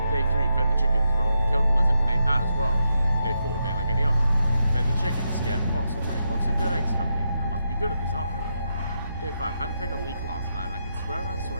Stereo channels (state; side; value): inverted; both; correlation -0.83